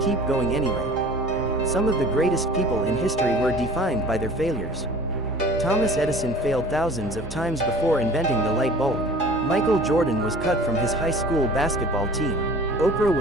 going anyway. Some of the greatest people in history were defined by their failures. Thomas Edison failed thousands of times before inventing the light bulb. Michael Jordan was cut from his high school basketball team. Oprah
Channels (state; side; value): normal; both; correlation 0.45